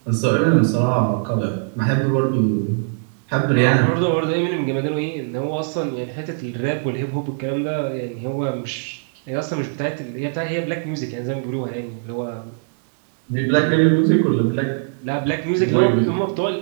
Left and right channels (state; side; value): silent; left; digital silence